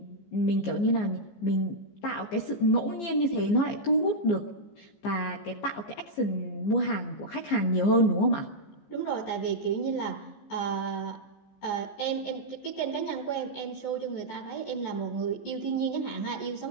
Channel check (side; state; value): right; late; 15 ms